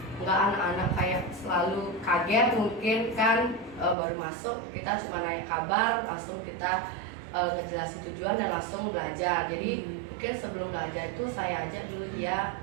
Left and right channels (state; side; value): drops out; left; at 4.0 s